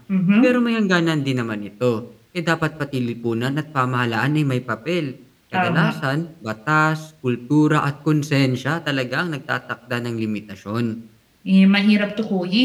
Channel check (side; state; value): both; identical; correlation 1.00